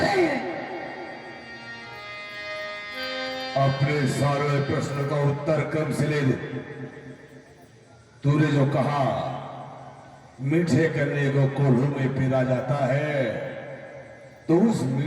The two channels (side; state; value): both; identical; correlation 1.00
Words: रहे हैं? अपने सारे प्रश्न का उत्तर कम से ले दे। तूने जो कहा मीठे करने को कोल्हू में पीरा जाता है, तो उस